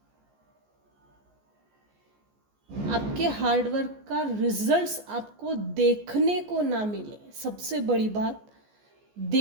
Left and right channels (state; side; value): late; left; 14 ms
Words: आपके हार्डवर्क का रिजल्ट्स आपको देखने को ना मिले, सबसे बड़ी बात,